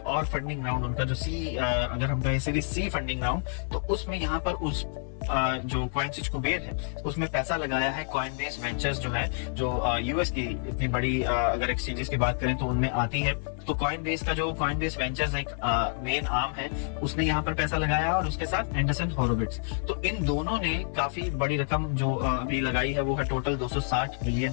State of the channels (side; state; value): right; silent; 59 dB below the other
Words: और फंडिंग राउंड, उनका जो अगर हम कहें सीरीज सी फंडिंग राउंड, तो उसमें यहाँ पर उस जो कॉइनस्विच कुबेर है उसमें पैसा लगाया है कॉइनबेस वेंचर्स, जो है जो यूएस की इतनी बड़ी अगर एक्सचेंजेस की बात करें तो उनमें आती है। तो कॉइनबेस का जो कॉइनबेस वेंचर्स एक मेन आर्म है, उसने यहाँ पर पैसा लगाया और उसके साथ एंडरसन होरोविट्ज। तो इन दोनों ने काफी बड़ी रकम जो अभी लगाई है वो है टोटल $260